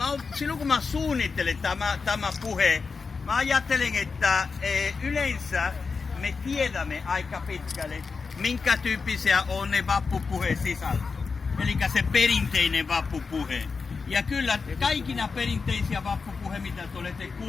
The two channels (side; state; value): right; quieter; 4.8 dB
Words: silloin kun mä suunnittelen tämä puhe, mä ajattelen, että yleensä me tiedämme aika pitkälle, minkä tyyppisiä on ne vappupuheen sisältö. Eli se perinteinen vappupuhe. Ja kyllä kaikina perinteisiä vappupuhe, mitä te olette